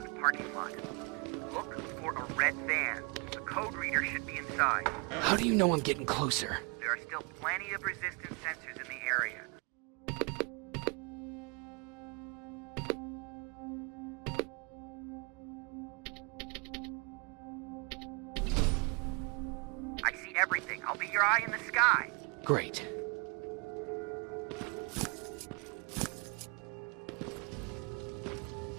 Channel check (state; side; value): quieter; left; 31.6 dB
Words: the parking lot. Look for a red van. The code reader should be inside. How do you know I'm getting closer? There are still plenty of resistance sensors in the area. I see everything. I'll be your eye in the sky. Great.